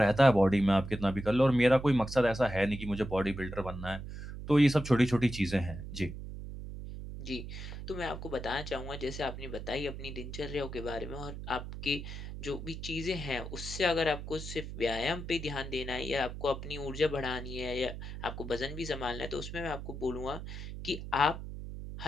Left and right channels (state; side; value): noise; right; hum, 9 dB below the sound